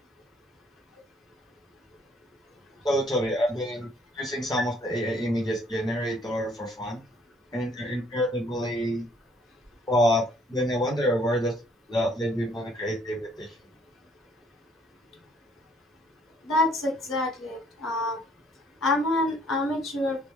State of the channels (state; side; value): normal; both; correlation 0.63